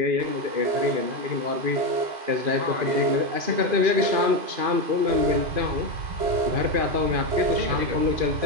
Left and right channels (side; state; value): left; late; 2.5 ms